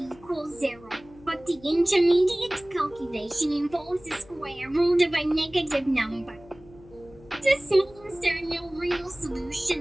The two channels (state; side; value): noise; left; hum, 23 dB below the sound